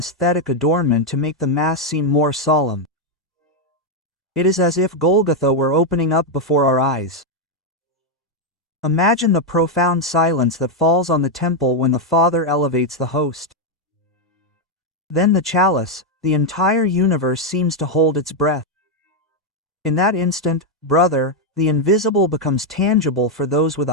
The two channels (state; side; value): normal; both; correlation 0.02